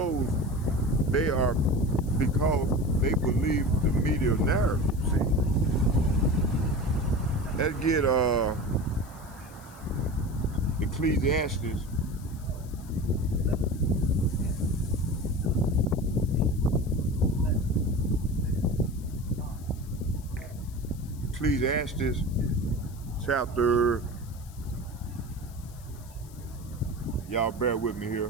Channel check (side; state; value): left; noise; hiss, 23 dB below the sound